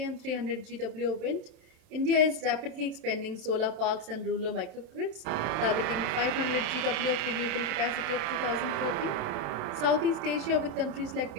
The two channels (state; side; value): late; left; 27 ms